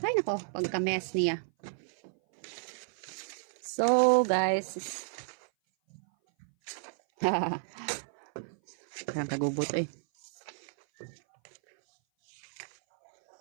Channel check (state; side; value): silent; left; 56 dB below the other